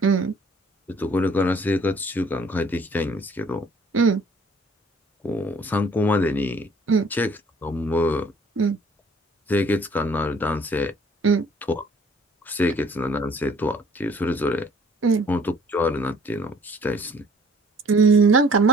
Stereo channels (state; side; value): normal; both; correlation 0.57